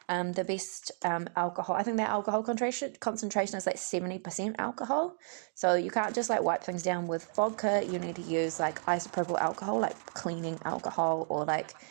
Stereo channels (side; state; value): left; silent; digital silence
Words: The best alcohol, I think the alcohol concentration is like 70% alcohol. So you can't just like wipe things down with vodka. You need to use like isopropyl alcohol, like cleaning alcohol, or like